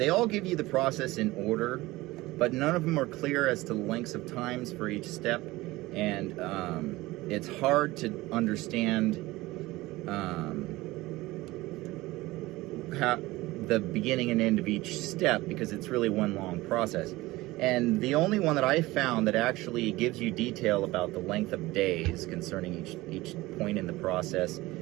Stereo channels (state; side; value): quieter; left; 19.2 dB